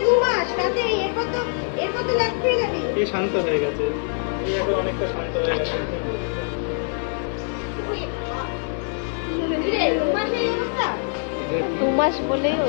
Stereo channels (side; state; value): right; silent; 63 dB below the other